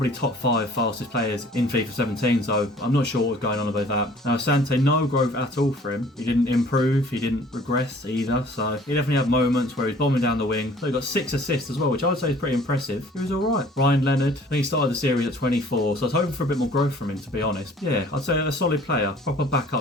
top 5 fastest players in FIFA 17, so I'm not sure what was going on about that. Now, Asante, no growth at all for him. He didn't improve, he didn't regress either, so he definitely had moments where he's bombing down the wing. So he got 6 assists as well, which I would say is pretty impressive. He was alright. Ryan Leonard, I think he started the series at 24, so I was hoping for a bit more growth from him, to be honest. Yeah, I'd say a solid player, proper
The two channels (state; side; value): normal; both; correlation 0.53